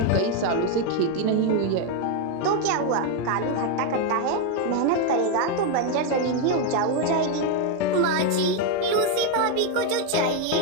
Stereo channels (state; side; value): different; both; correlation 0.01